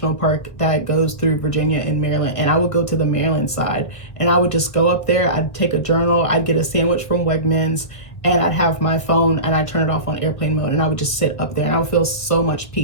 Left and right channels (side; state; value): right; late; 1.6 ms